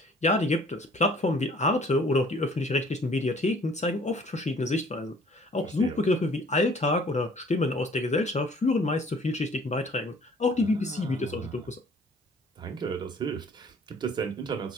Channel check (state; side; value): normal; both; correlation 0.55